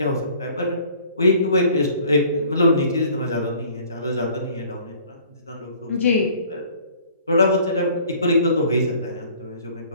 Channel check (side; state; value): both; inverted; correlation -0.53